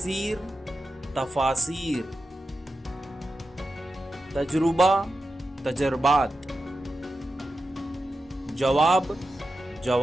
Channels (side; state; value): both; normal; correlation 0.90